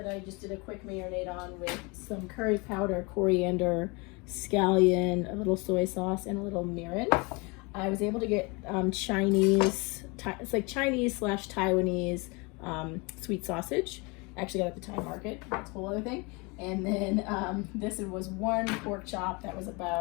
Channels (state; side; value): quieter; right; 28.4 dB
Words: I just did a quick marinade on with some curry powder, coriander, scallion, a little soy sauce, and a little mirin. I was able to get Chinese, it's like Chinese/Taiwanese sweet sausage. I actually got it at the Thai market, that's a whole other thing. And then this was one pork chop that was